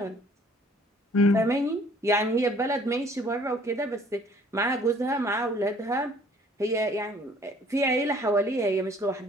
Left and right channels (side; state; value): both; normal; correlation 0.57